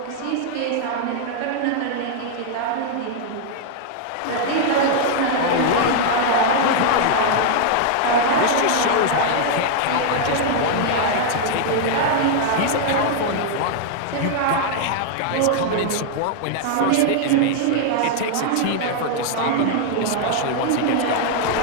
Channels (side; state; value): both; different; correlation 0.00